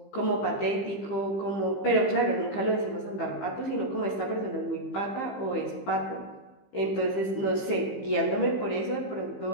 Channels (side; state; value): right; late; 15 ms